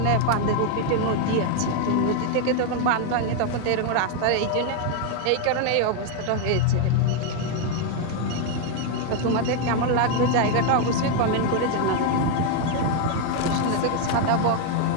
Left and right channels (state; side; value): different; both; correlation 0.01